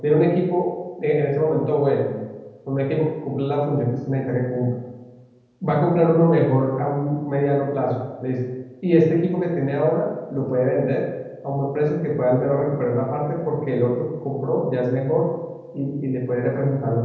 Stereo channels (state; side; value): identical; both; correlation 1.00